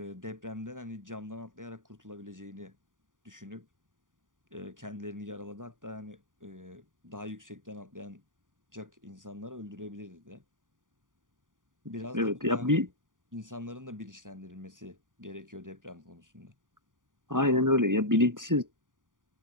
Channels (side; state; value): left; late; 0.88 ms